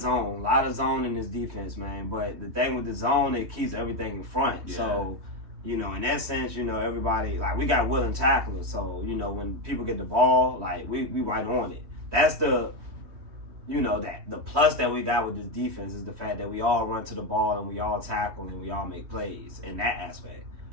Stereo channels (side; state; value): left; late; 3.2 ms